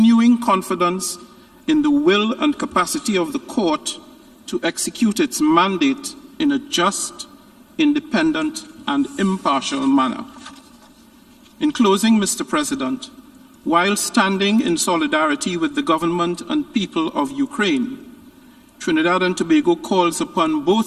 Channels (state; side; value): identical; both; correlation 1.00